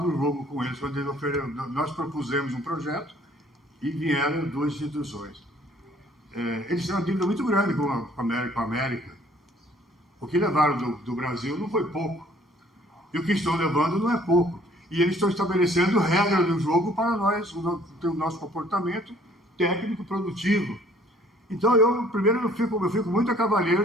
o jogo com eles, quando nós propusemos um projeto e vieram duas instituições. Eles têm uma dívida muito grande com a América. O que levaram do Brasil não foi pouco. E o que estão levando não é pouco. E eles estão estabelecendo regras do jogo para nós, o nosso comportamento técnico produtivo. Então, eu fico muito a cavaleiro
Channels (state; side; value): normal; both; correlation 0.58